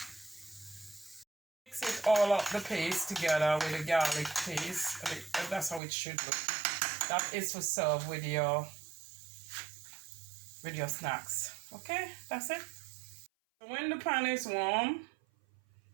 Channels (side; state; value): left; drops out; at 5.8 s